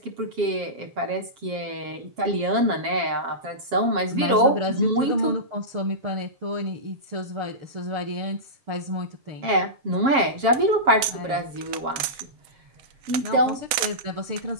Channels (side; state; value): left; late; 7.3 ms